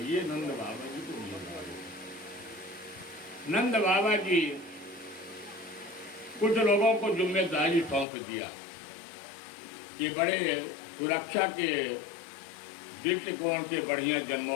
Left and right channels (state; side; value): drops out; right; at 8.1 s